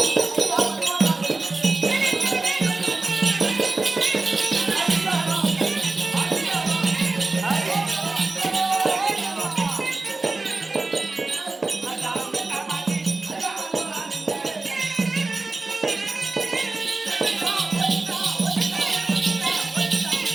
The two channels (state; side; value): quieter; left; 3.5 dB